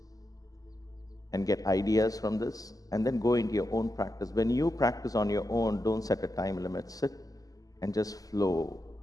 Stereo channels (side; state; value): right; late; 0.17 ms